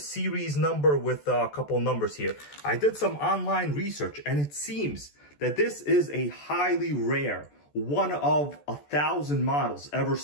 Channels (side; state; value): right; late; 14 ms